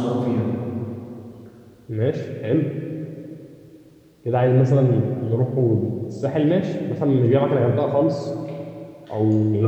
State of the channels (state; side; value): identical; both; correlation 1.00